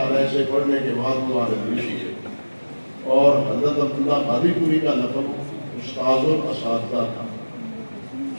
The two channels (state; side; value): inverted; both; correlation -1.00